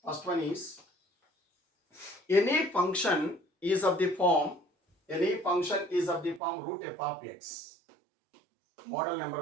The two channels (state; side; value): drops out; left; at 6.4 s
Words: First one is any function is of the form root f of x. Model number